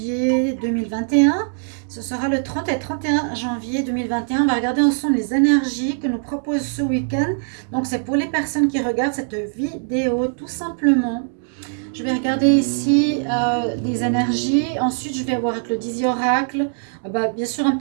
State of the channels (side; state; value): left; silent; 65 dB below the other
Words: 2021. Ce sera le 30 et 31 janvier 2021. On va regarder ensemble les énergies que nous propose ce week-end. Donc, c'est pour les personnes qui regardent cette vidéo, tout simplement. Je vais regarder ici des énergies. Ensuite, je vais voir avec le Dizzy Oracle. Bien sûr, un